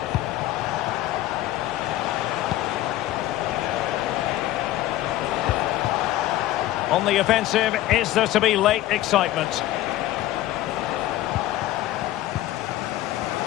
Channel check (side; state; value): right; quieter; 15.0 dB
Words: On the offensive, is there to be late excitement?